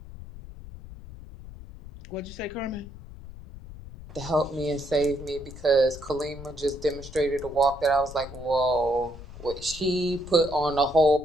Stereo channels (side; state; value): left; noise; rumble, 14 dB below the sound